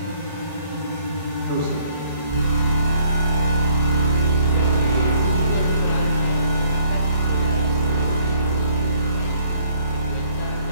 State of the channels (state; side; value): inverted; both; correlation -0.61